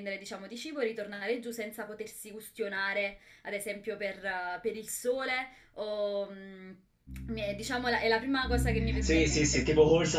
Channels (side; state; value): both; identical; correlation 1.00